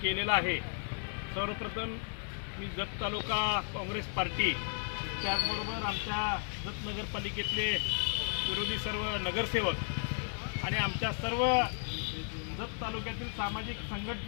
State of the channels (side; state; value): right; silent; 55 dB below the other